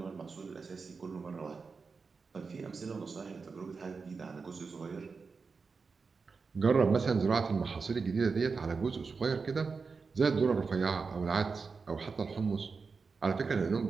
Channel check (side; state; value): left; quieter; 4.8 dB